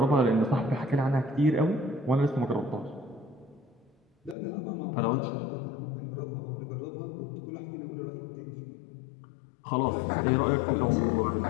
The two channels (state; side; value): drops out; right; at 4.4 s